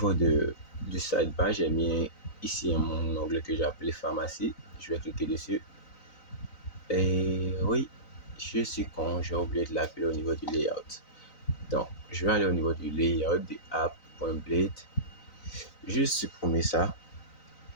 du sidebar, j'ai mis ici mon onglet que j'ai appelé pharmacie. Je vais cliquer dessus. Et oui, je suis con, j'ai oublié de l'appeler au niveau du layout. Donc, je vais aller au niveau du layout de app.blade. Juste supprimer ça.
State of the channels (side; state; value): right; late; 3.9 ms